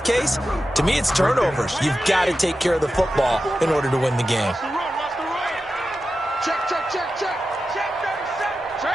to me, it's turnovers. You've got to take care of the football in order to win the game. Check.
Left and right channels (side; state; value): both; normal; correlation 0.92